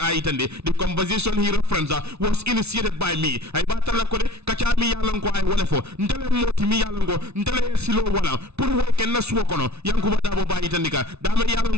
a itande the conversation he reference was initiated by me ay batala ko de kacha mi yalon ko ay wala fo ndele moti mi yalon ko ndele silo wala pour way ken na suwo kono Yankuba Dabo dabo ba itandika dama yalan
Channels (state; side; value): late; left; 0.80 ms